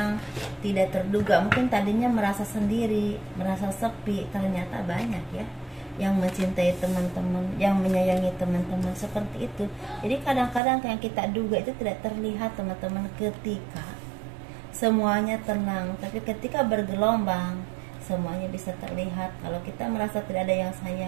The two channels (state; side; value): drops out; left; at 10.6 s